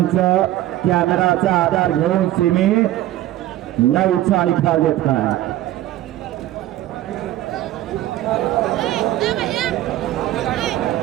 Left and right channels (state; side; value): quieter; left; 14.4 dB